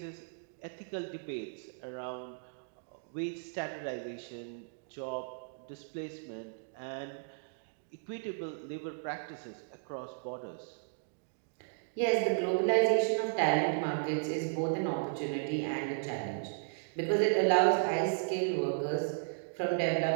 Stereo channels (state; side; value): silent; left; digital silence